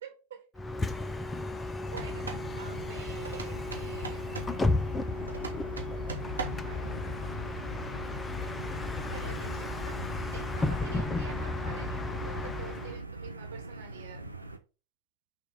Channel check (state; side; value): normal; both; correlation 0.59